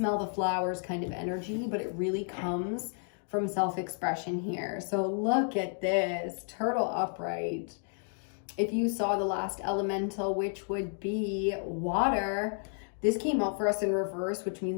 the flowers kind of energy, but it really comes from self-expression here. So look at this, turtle upright. If you saw the last elemental, which would be water, this came out for us in reverse, which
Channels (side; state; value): right; silent; 57 dB below the other